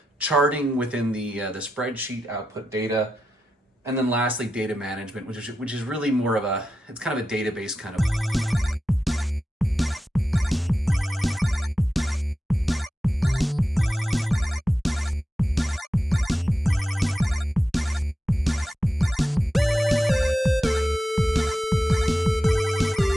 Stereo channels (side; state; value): both; normal; correlation 0.89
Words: charting within the spreadsheet output data, and then lastly, data management, which is really more of a, it's kind of a database kind of.